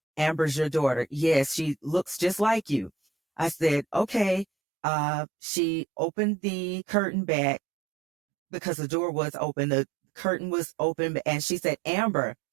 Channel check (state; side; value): drops out; left; at 4.5 s